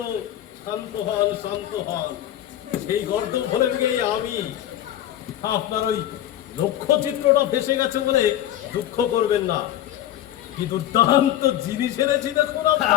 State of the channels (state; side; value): quieter; right; 12.3 dB